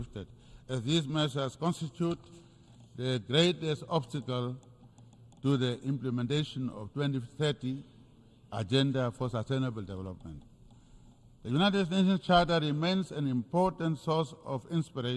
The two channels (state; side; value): identical; both; correlation 1.00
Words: as these measures constitute the greatest obstacle to the implementation of 2030 Agenda for Sustainable Development. The United Nations Charter remains an important source of